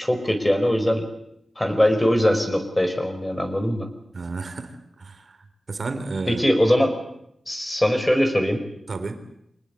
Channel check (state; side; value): normal; both; correlation 0.97